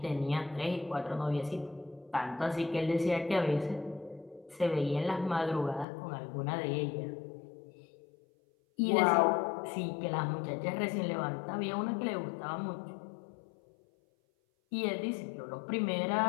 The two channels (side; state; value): right; drops out; at 5.9 s